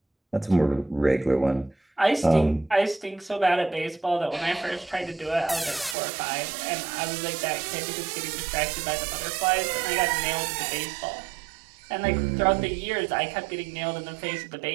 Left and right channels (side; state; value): left; drops out; at 6.0 s